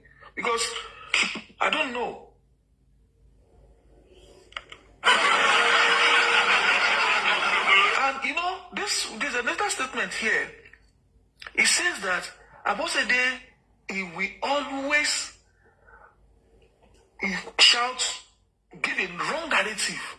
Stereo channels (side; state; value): both; identical; correlation 1.00